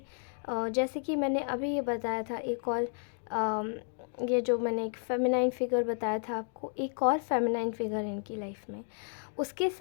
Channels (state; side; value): silent; right; 56 dB below the other